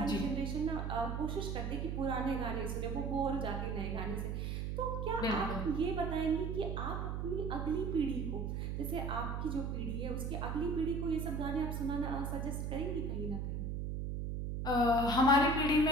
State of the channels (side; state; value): right; noise; hum, 2 dB below the sound